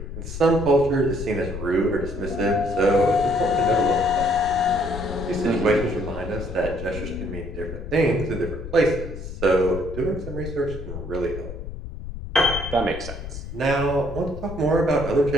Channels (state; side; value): noise; left; rumble, 9 dB below the sound